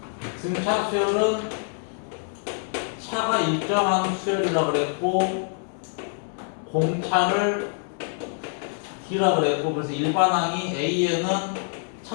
등차 수열은 차가 일정한 수열이라고 그랬고, 공차를 D라고 그랬고, 그래서 일반항이 A에는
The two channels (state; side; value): silent; right; 60 dB below the other